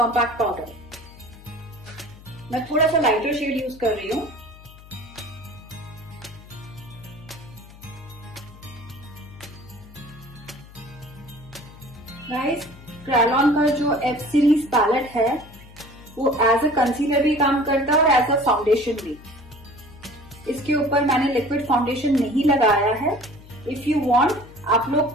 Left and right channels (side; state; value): left; noise; hum, 20 dB below the sound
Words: powder. मैं थोड़ा सा लाइटर शेड यूज कर रही हूँ। गाइस क्रायोलॉन का जो एफ सीरीज पैलेट है वो एज अ कंसीलर भी काम करता है और एज अ फाउंडेशन भी। इसके ऊपर मैंने लिक्विड फाउंडेशन नहीं लगाया है। इफ यू वांट आप